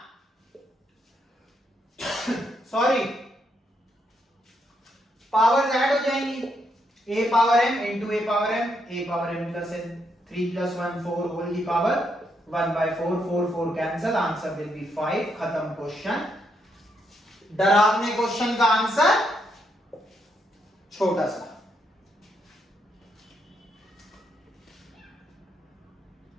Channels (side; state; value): both; normal; correlation 0.78